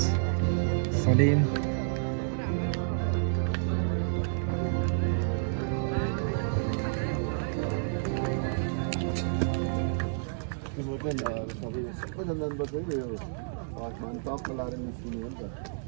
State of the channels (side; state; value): left; silent; digital silence